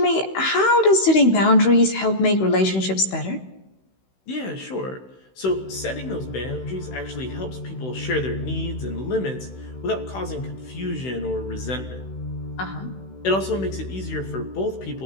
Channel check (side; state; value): right; late; 16 ms